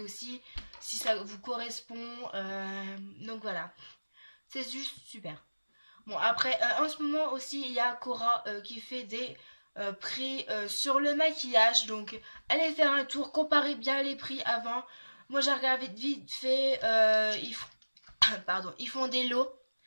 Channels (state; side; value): inverted; both; correlation -1.00